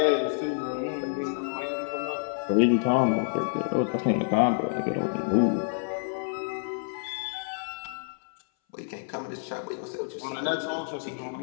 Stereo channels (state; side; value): silent; right; 59 dB below the other